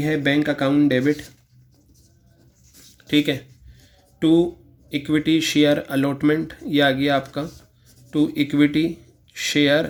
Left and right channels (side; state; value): both; identical; correlation 1.00